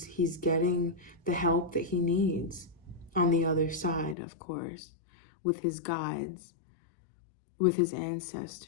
getting the help that he needs on the other side, of course, with his guides, with his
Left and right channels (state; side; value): drops out; right; at 4.2 s